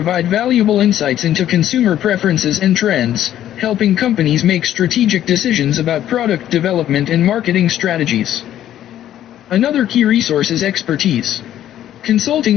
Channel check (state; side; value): quieter; right; 11.8 dB